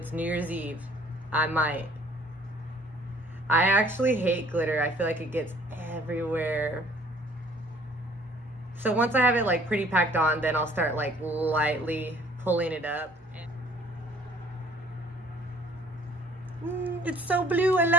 New Year's Eve. I might. I actually hate glitter. I feel like it gets everywhere. So once I have it like pretty packed on, then I'll start like lightly pulling it up. It's so blue, I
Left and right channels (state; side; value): normal; both; correlation 0.56